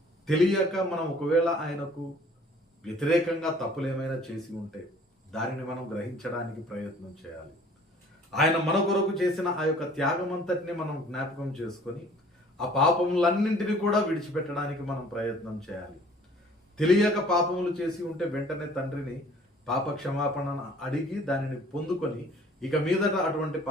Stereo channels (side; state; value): both; normal; correlation 0.53